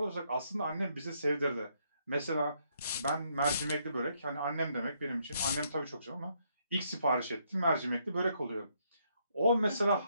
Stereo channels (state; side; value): inverted; both; correlation -0.73